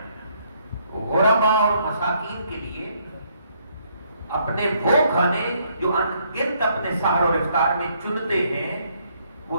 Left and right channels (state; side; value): inverted; both; correlation -0.70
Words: غرباء اور مساکین کے لیے اپنے وہ کھانے جو انگنت اپنے سحر اور افطار میں چنتے ہیں،